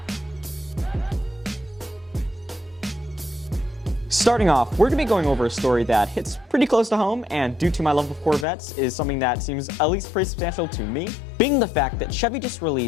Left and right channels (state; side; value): drops out; right; at 8.5 s